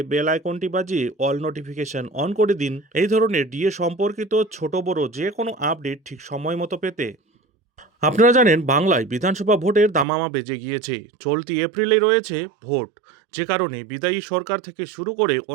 বেল আইকনটি বাজিয়ে অল নোটিফিকেশন অন করে দিন এই ধরনের ডিএ সম্পর্কিত ছোট বড় যে কোনো আপডেট ঠিক সময় মতো পেতে। আপনারা জানেন, বাংলায় বিধানসভা ভোটের দামামা বেজে গিয়েছে। চলতি এপ্রিলে রয়েছে ভোট, যে কারণে বিদায়ী সরকার থেকে শুরু করে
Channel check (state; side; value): drops out; left; at 10.1 s